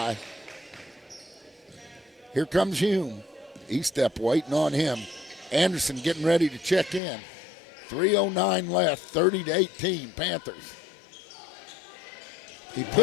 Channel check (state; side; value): drops out; right; at 7.0 s